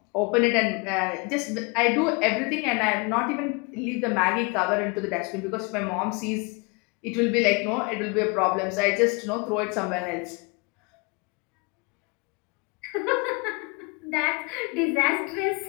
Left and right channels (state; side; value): quieter; right; 30.3 dB